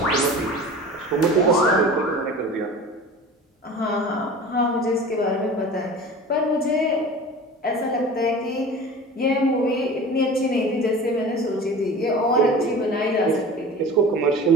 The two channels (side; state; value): both; normal; correlation 0.38